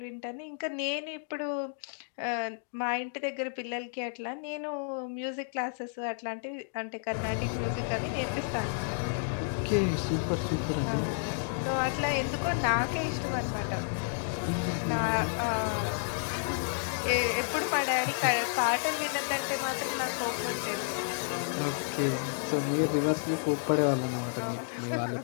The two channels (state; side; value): silent; right; digital silence